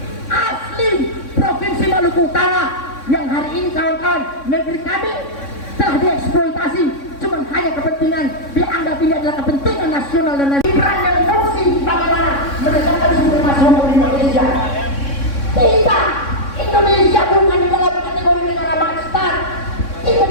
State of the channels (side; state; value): right; late; 3.6 ms